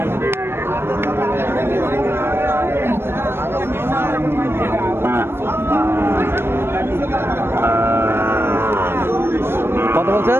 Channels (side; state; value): left; late; 0.12 ms